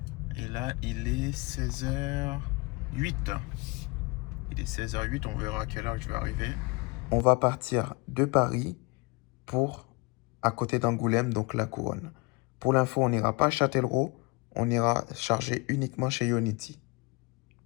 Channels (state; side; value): quieter; right; 26.6 dB